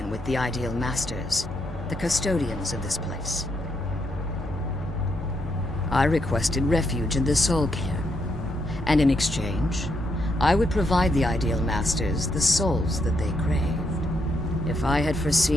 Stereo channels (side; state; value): both; normal; correlation 0.78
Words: with the Ideal Masters, the custodians of this place. I requested refuge in the Soul Cairn, and in exchange, I would provide the Ideal Masters the souls that they craved. If I had